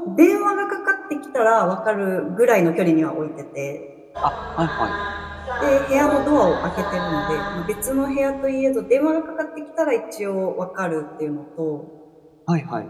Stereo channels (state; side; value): identical; both; correlation 1.00